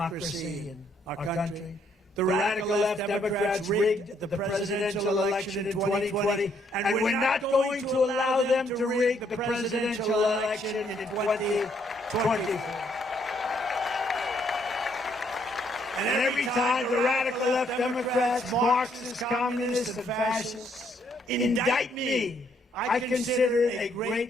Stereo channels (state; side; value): normal; both; correlation 0.70